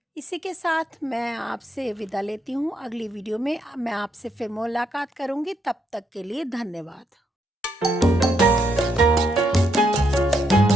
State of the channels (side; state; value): both; normal; correlation 0.77